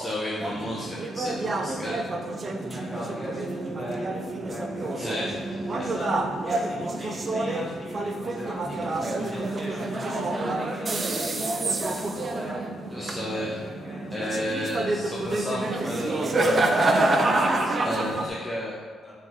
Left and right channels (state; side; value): normal; both; correlation 0.81